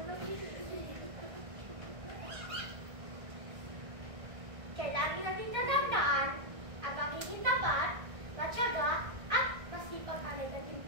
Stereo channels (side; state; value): left; late; 1.6 ms